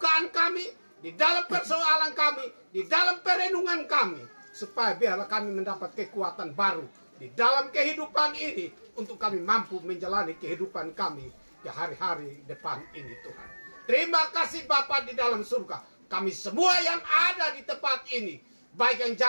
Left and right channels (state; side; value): inverted; both; correlation -1.00